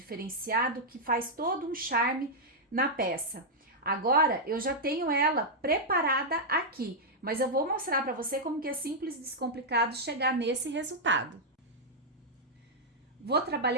que faz todo um charme na peça. Agora eu já tenho ela preparada aqui, mas eu vou mostrar para você como que é simples e descomplicado chegar nesse resultado. Vou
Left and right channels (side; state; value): both; normal; correlation -0.05